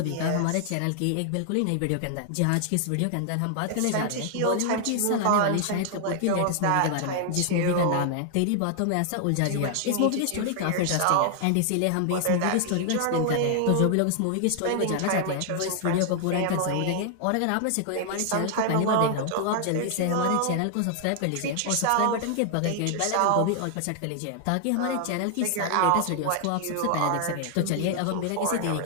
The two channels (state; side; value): different; both; correlation 0.00